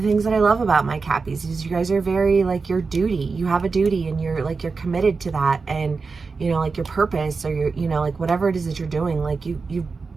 the things that I love about my Cappies is you guys are very like your duty. You have a duty and you're committed to that, and you know, like your purpose, or your, you know, like whatever it is that you're doing, like you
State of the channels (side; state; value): left; quieter; 4.5 dB